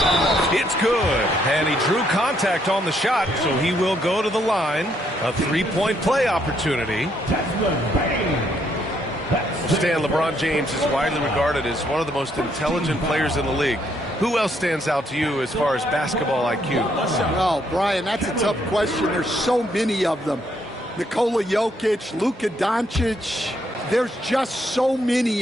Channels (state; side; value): normal; both; correlation 0.72